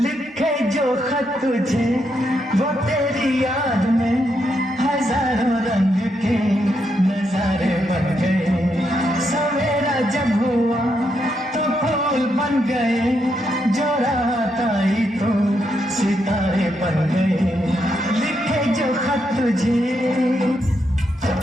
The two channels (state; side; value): normal; both; correlation 0.80